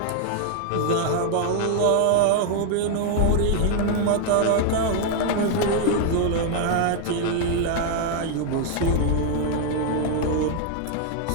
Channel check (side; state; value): both; different; correlation 0.00